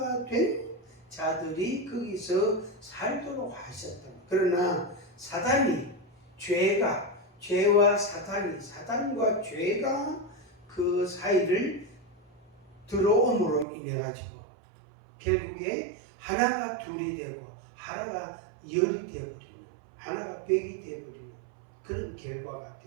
된 자들이 거기서 살도록 하셨다. 그러나 사단과 죄가 그 사이를 들어옴으로 인해 가지고 결국에 하나가 둘이 되고 하나가 열이 되어버리는, 하나가 백이 되어버리는 그런 결과가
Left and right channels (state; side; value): drops out; left; at 13.7 s